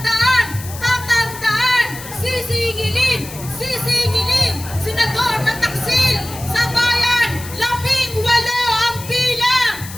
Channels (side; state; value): left; noise; hiss, 14 dB below the sound